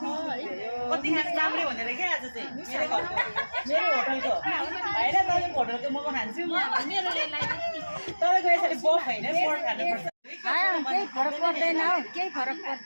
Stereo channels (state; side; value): inverted; both; correlation -1.00